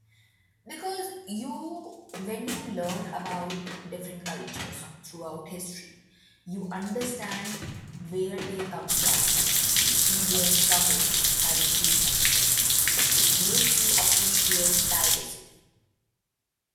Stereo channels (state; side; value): identical; both; correlation 1.00